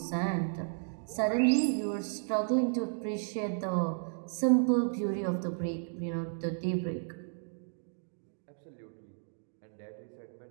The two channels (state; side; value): silent; left; digital silence